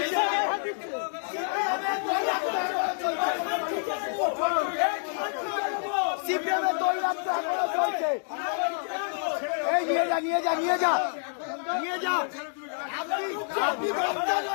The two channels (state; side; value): silent; right; digital silence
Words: সিপিএমের দৌড়াম তো এখনো চলছে। এই নিয়ে যা নিয়ে যা নিয়ে যা নিয়ে যা। আপনি মস্তান